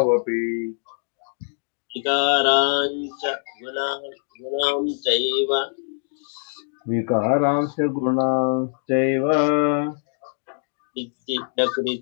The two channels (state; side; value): silent; right; digital silence